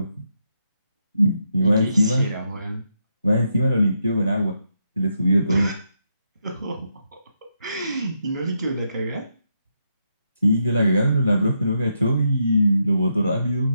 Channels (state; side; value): inverted; both; correlation -0.81